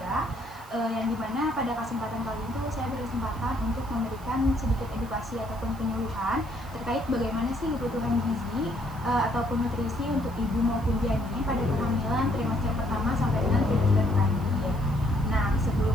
yang dimana pada kesempatan kali itu saya berkesempatan untuk memberikan sedikit edukasi ataupun penyuluhan terkait bagaimana sih kebutuhan gizi ataupun nutrisi untuk ibu maupun janin pada kehamilan trimester pertama sampai dengan trimester terakhir. Nah, sebelum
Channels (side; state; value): right; noise; hiss, 23 dB below the sound